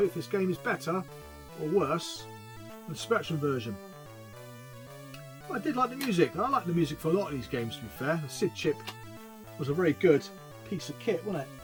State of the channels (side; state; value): both; identical; correlation 1.00